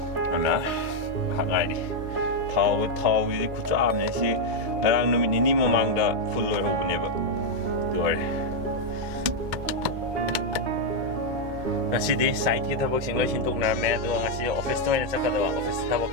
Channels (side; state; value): left; late; 2.2 ms